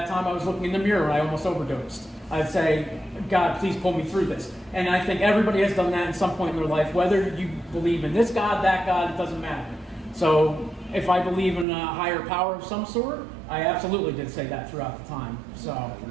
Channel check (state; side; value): drops out; left; at 11.7 s